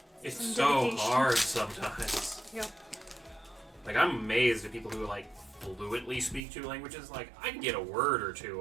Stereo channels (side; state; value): left; drops out; at 6.4 s